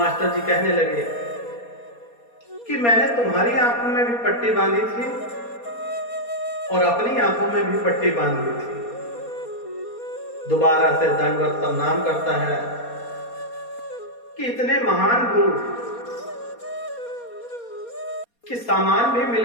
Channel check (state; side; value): late; right; 4.2 ms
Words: जी कहने लगे कि मैंने तुम्हारी आंखों में भी पट्टी बांधी थी और अपनी आंखों में भी पट्टी बांधी थी। दोबारा से दंडवत प्रणाम करता है कि इतने महान गुरु कि सामान भी